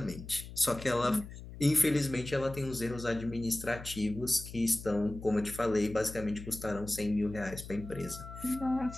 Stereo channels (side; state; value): left; noise; hum, 13 dB below the sound